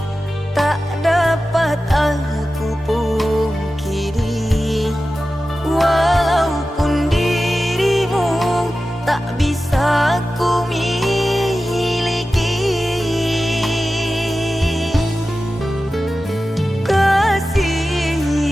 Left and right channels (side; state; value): both; normal; correlation 0.94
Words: tak dapat aku pungkiri. Walaupun dirimu tak bisa ku miliki, kasih